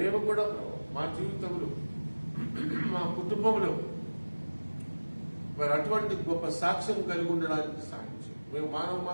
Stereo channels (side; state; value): both; inverted; correlation -1.00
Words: కూడా మా జీవితంలో మా కుటుంబంలో మరి అటువంటి గొప్ప సాక్ష్యం కలిగి ఉండడానికి సాధించాం. మేము మానవ